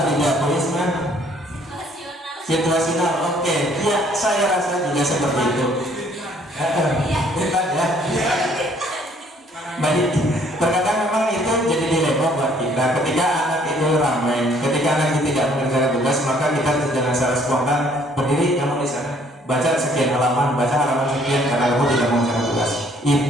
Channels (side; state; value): both; normal; correlation 0.62